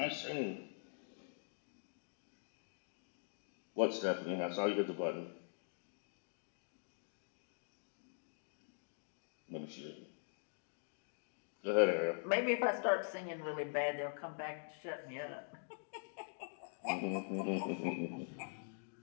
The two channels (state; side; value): silent; right; digital silence